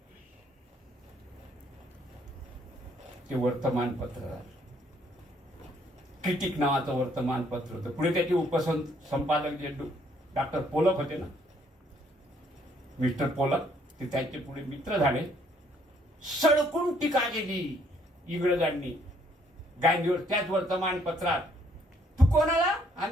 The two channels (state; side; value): normal; both; correlation 0.66